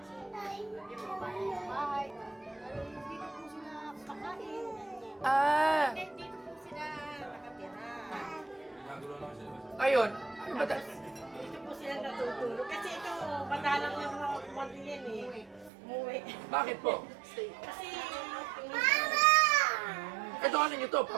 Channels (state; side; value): drops out; left; at 15.7 s